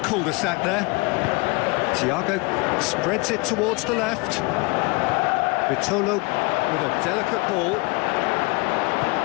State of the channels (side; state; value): right; quieter; 27.0 dB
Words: there. Thiago spreads it towards the left. Vitolo with a delicate ball.